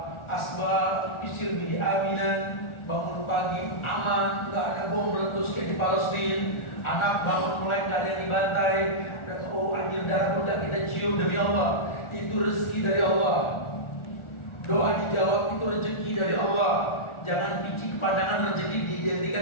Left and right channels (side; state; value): right; late; 1.4 ms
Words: asbab isir bihi aminan, bangun pagi aman, nggak ada bom meletus kayak di Palestina. Anak bangun mulai nggak ada yang dibantai, dan oh anjir darah udah kita cium demi Allah. Itu rezeki dari Allah. Doa dijawab itu rezeki dari Allah. Jangan picik pandangan rezeki